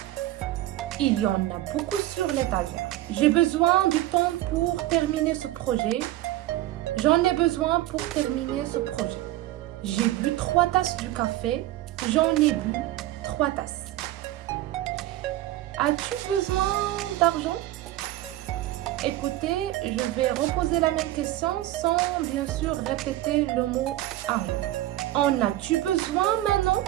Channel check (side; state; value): left; quieter; 15.3 dB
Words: Il y en a beaucoup sur l'étagère. J'ai besoin du temps pour terminer ce projet. J'en ai besoin pour terminer ce projet. J'ai bu 3 tasses du café. J'en ai bu 3 tasses. As-tu besoin d'argent? Écoutez, je vais reposer la même question sans bien sûr répéter le mot argent. En as-tu besoin maintenant?